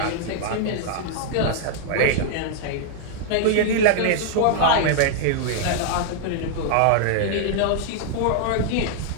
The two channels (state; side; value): different; both; correlation -0.01